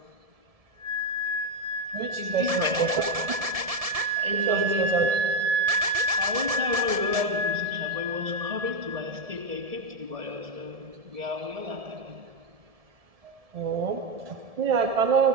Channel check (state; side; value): late; left; 1.7 ms